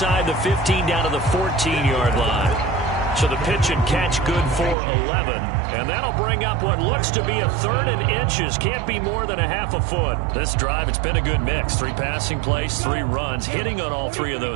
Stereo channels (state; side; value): drops out; left; at 4.8 s